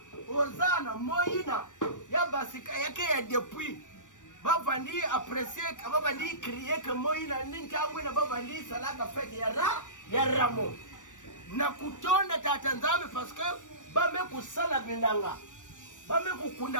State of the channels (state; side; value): late; right; 0.87 ms